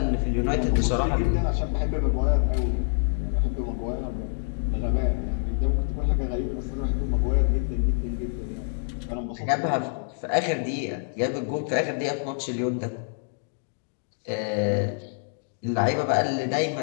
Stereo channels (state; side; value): silent; right; digital silence